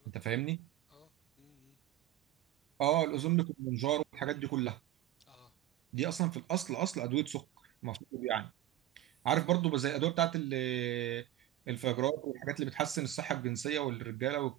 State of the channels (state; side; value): quieter; left; 14.3 dB